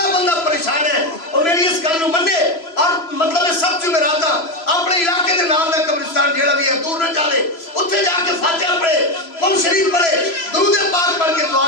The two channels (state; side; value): late; right; 3.0 ms